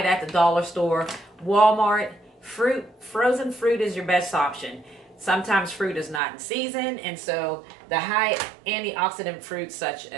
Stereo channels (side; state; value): left; drops out; at 6.2 s